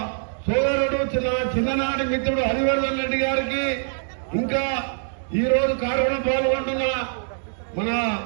సోదరుడు చిన్ననాటి మిత్రుడు హరివర్ధన్ రెడ్డి గారికి, ఇంకా ఈ రోజు కార్యక్రమం పాల్గొంటున్న మన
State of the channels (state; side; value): silent; left; 63 dB below the other